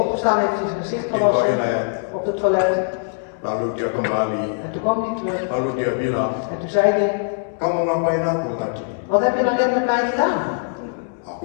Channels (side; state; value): right; silent; digital silence